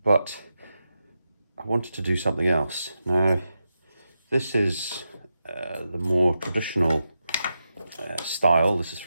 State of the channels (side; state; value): both; inverted; correlation -0.87